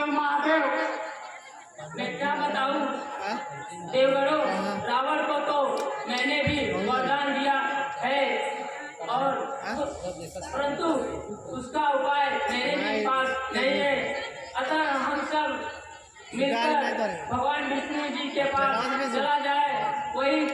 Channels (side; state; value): both; identical; correlation 1.00